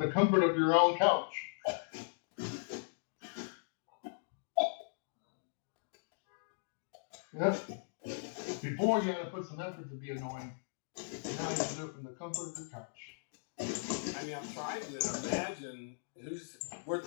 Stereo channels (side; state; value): right; silent; digital silence